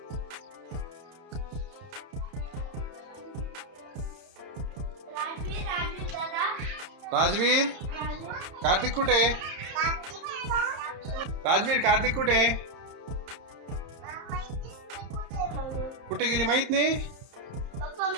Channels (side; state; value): left; late; 31 ms